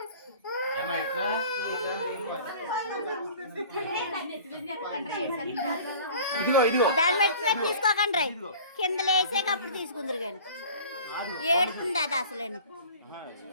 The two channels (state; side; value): inverted; both; correlation -0.45